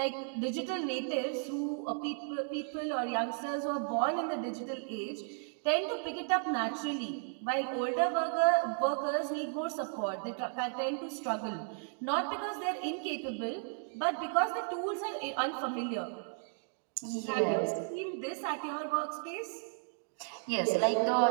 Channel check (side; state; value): left; silent; 55 dB below the other